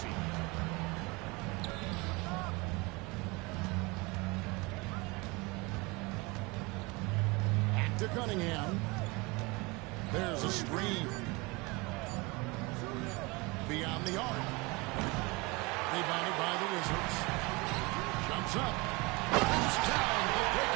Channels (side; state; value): left; quieter; 25.4 dB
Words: Back to Cunningham. There's a screen. Beyond the arc. Rebounded by the Wizards. Jumps up. Goes down the